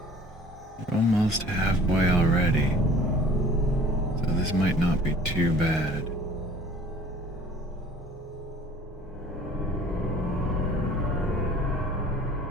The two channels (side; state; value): both; normal; correlation 0.50